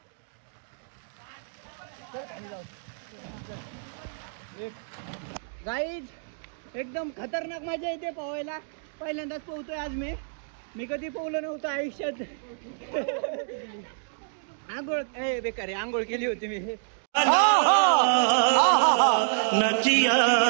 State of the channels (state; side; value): silent; left; digital silence